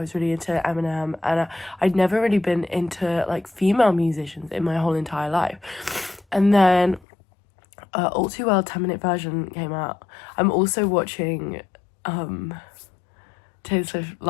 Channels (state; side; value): drops out; right; at 7.0 s